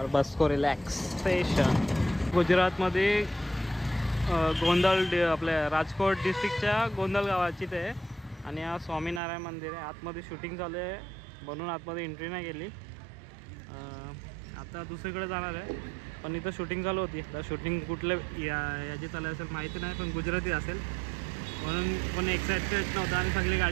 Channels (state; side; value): drops out; left; at 9.2 s